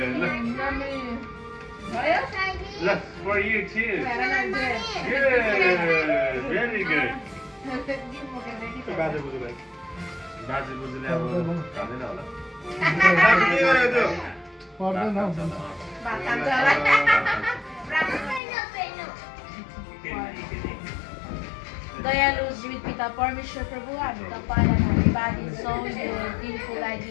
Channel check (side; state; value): right; drops out; at 18.4 s